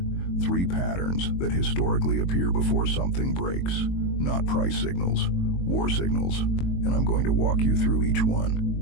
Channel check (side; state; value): right; late; 22 ms